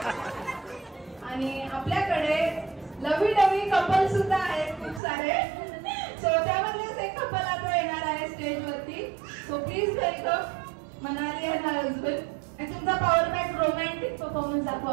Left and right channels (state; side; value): drops out; left; at 5.0 s